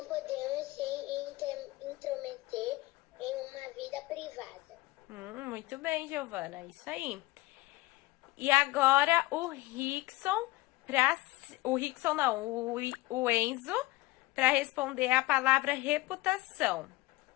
podemos se intrometer em uma vida privada. Muito bem, Giovana. Isso aí. E agora o Rickson, o Rickson não, o Enzo, para responder a palavra reputação.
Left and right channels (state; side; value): quieter; right; 20.2 dB